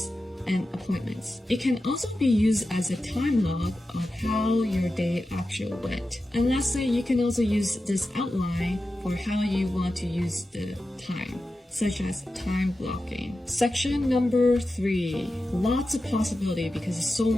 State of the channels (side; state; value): both; normal; correlation 0.92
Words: and appointments. It can also be used as a time log of how your day actually went. And lastly, you can also use this outline for how you want to use the time, such as time blocking. Section number 3. Lots of possibility because there's so